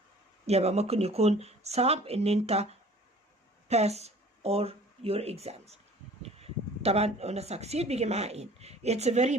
يبقى ممكن يكون صعب ان انت pass or your exams. طبعا قلنا succeed بيجي معاه in. It's very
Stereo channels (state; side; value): normal; both; correlation 0.49